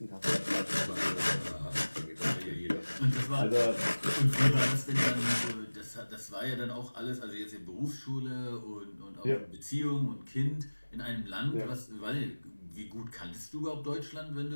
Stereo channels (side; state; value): both; inverted; correlation -1.00